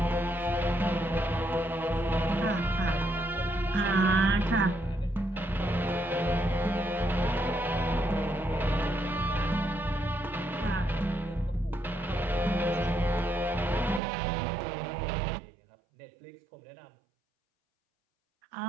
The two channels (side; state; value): left; drops out; at 14.0 s